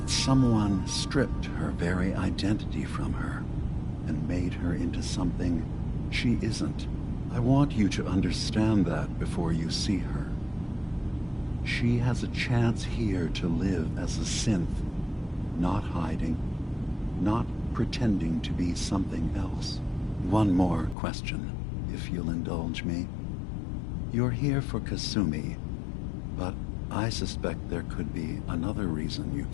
someone stripped her very identity from her and made her into something she isn't. I want you to understand that before you see her. She has a chance here to live as a synth, not hiding, not pretending to be something else. One more question, if you'll indulge me. You're here for Kasumi, but I suspect there could be another reason you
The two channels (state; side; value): drops out; right; at 21.0 s